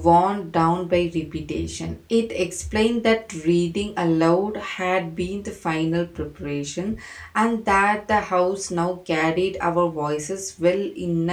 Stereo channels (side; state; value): both; identical; correlation 1.00